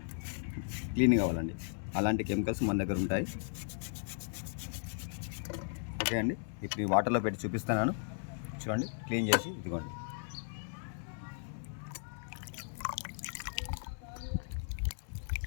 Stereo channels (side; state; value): right; silent; digital silence